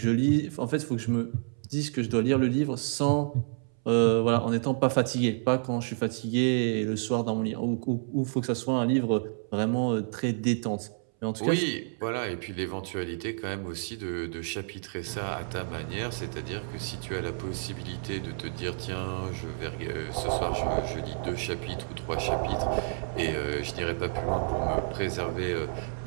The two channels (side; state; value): left; silent; 58 dB below the other